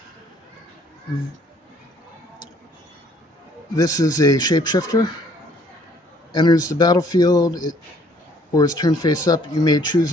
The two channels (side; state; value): both; normal; correlation 0.61